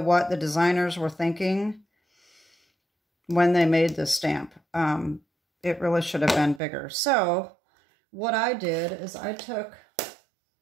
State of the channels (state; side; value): drops out; left; at 6.6 s